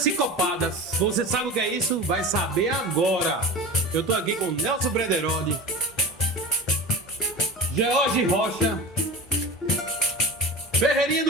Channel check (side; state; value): both; normal; correlation 0.31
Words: Você sabe o que é isso? Vai saber agora. Eu tô aqui com Nelson Brederode, George Rocha, Ferreirinha